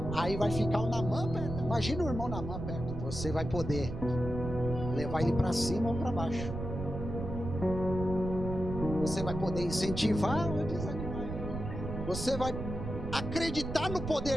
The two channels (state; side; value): noise; right; rumble, 6 dB below the sound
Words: Aí vai ficar o Naamã perto. Imagina o irmão Naamã perto. Você vai poder levar ele para cima ou para baixo. Você vai poder incentivar ou desanimar. Você vai acreditar no